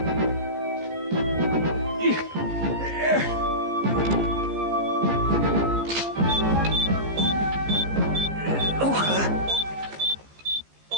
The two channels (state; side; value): late; left; 15 ms